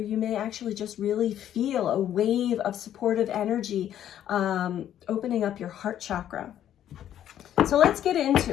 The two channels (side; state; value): right; quieter; 10.9 dB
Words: may actually just really feel a wave of supportive energy opening up your heart chakra. So let's get